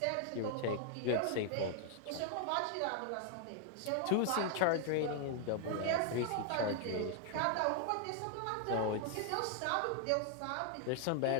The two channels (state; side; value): different; both; correlation 0.00